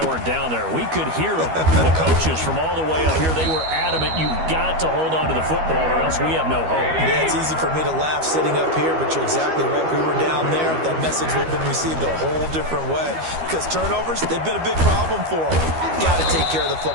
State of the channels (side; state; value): left; late; 12 ms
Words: weren't down there. We could hear them. The coaches from all the way up here, they were adamant, you've got to hold on to the football or else we have no hope. Yeah, it's easy for me to laugh sitting up here, but you're exactly right. We were down there. That message would have been received a whole different way, because turnovers, they've been a big problem for them. Got to take care of the